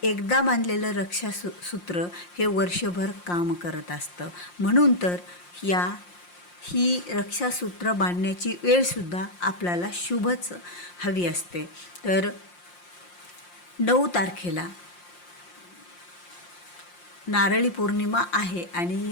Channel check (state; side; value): late; right; 5.7 ms